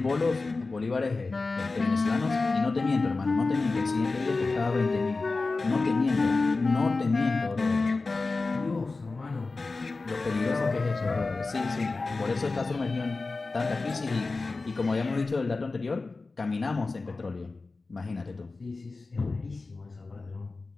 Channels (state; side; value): quieter; right; 3.7 dB